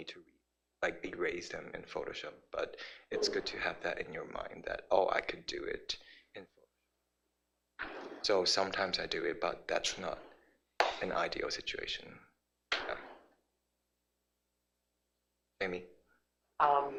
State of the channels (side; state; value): both; identical; correlation 1.00